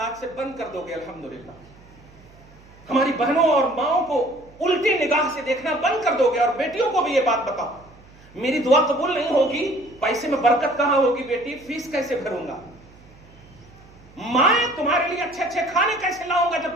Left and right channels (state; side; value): noise; right; hum, 25 dB below the sound